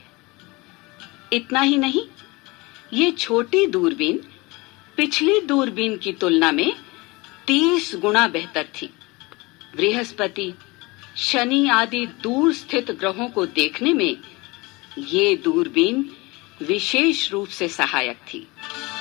इतना ही नहीं, ये छोटी दूरबीन पिछली दूरबीन की तुलना में 30 गुना बेहतर थी। बृहस्पति, शनि आदि दूर स्थित ग्रहों को देखने में ये दूरबीन विशेष रूप से सहायक थी।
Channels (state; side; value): quieter; right; 24.1 dB